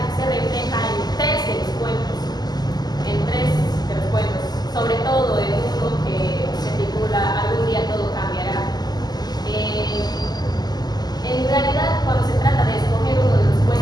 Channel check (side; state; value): right; late; 0.20 ms